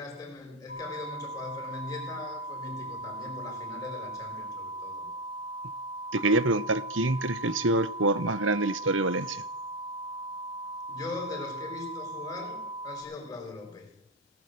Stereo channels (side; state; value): both; normal; correlation 0.09